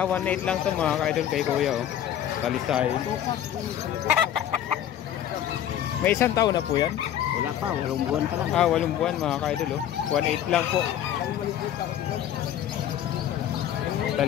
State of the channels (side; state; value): right; quieter; 10.8 dB